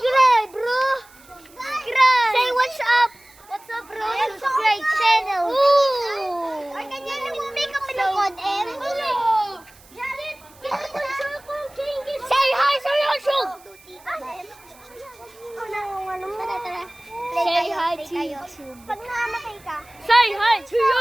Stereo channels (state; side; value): noise; right; hiss, 26 dB below the sound